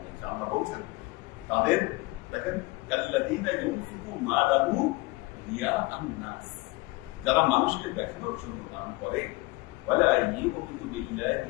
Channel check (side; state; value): right; quieter; 22.7 dB